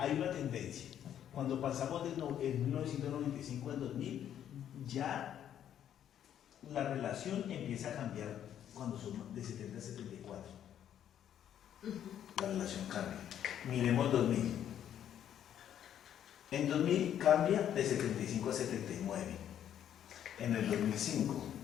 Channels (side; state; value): right; quieter; 10.1 dB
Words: una tendencia. Cuando pasamos de 1995 al 2000, ya la relación empieza a cambiar cuando son de 70 a 74. La relación cambia. Miremos 2000. En 2000 cambia de 75 a 79. En el 2005